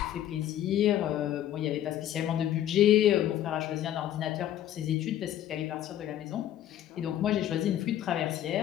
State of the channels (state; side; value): quieter; right; 11.8 dB